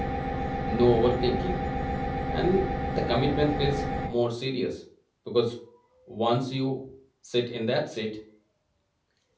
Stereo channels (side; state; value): both; identical; correlation 1.00